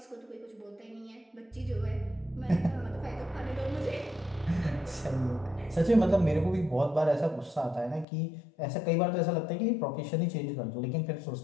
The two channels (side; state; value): right; drops out; at 8.1 s